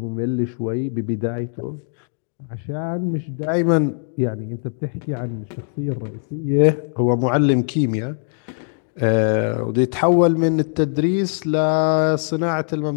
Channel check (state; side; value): silent; right; 65 dB below the other